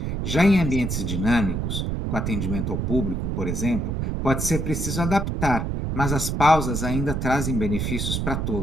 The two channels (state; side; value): noise; right; rumble, 1 dB below the sound